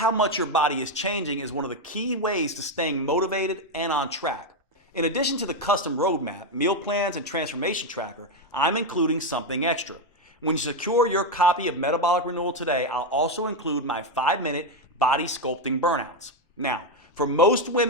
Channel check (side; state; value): both; normal; correlation 0.06